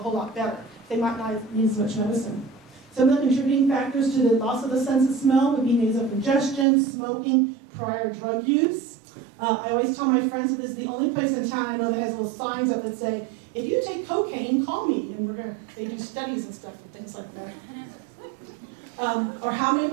lot better. They might not need as much medicine. Some of the contributing factors to the loss of the sense of smell would be nasal congestion, smoking, prior drug use. I always tell my friends that this is the only place in town I know that has little signs up that say, if you take cocaine, call me. And they do studies and stuff and things like that. Or how many of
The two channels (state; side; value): drops out; left; at 6.7 s